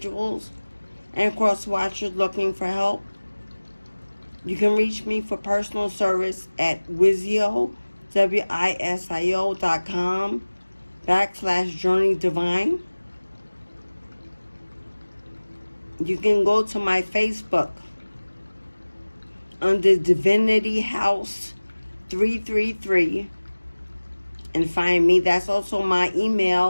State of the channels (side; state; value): both; inverted; correlation -1.00